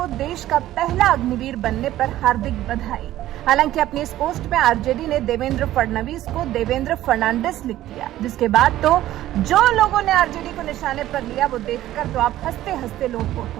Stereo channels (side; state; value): left; quieter; 14.1 dB